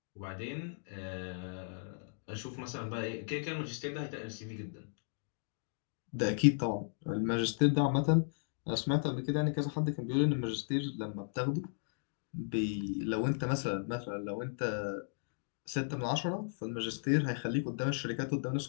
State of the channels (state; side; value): silent; right; digital silence